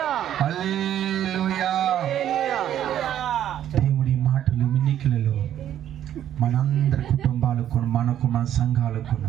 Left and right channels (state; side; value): quieter; left; 10.9 dB